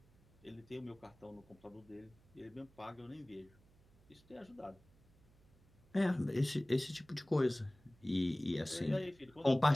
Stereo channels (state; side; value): noise; right; hum, 29 dB below the sound